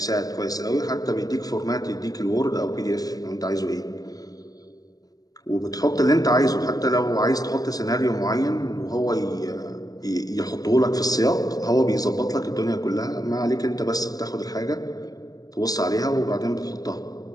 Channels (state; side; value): late; right; 0.18 ms